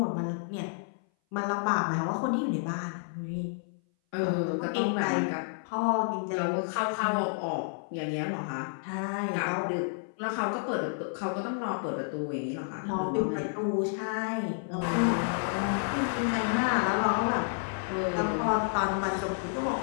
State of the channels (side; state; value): right; silent; 57 dB below the other